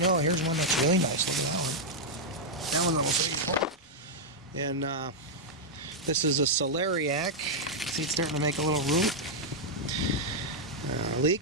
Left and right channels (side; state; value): both; normal; correlation -0.04